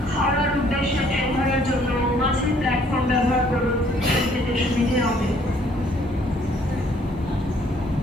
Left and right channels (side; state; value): both; normal; correlation 0.62